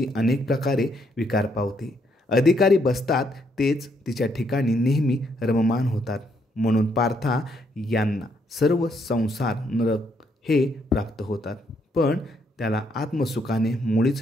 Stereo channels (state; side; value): normal; both; correlation 0.73